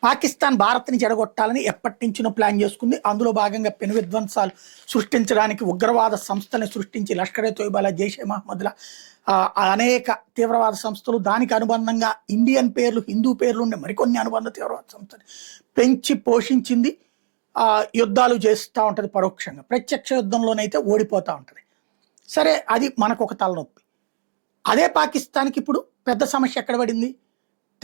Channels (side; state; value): left; silent; 58 dB below the other